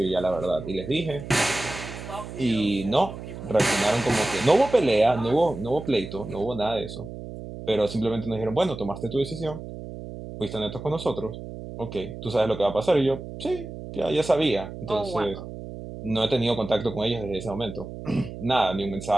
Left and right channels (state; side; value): noise; right; hum, 11 dB below the sound